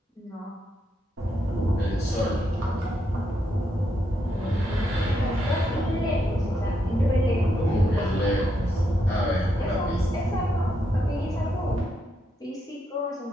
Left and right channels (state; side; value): normal; both; correlation 0.80